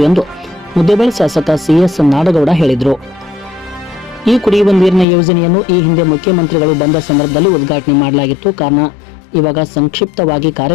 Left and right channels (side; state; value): right; drops out; at 5.1 s